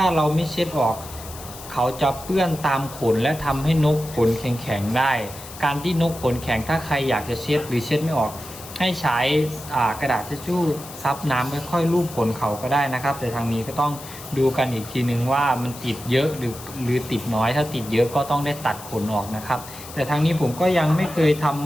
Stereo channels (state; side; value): noise; left; hiss, 15 dB below the sound